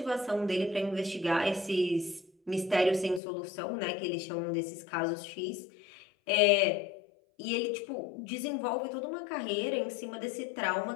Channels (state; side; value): drops out; right; at 3.2 s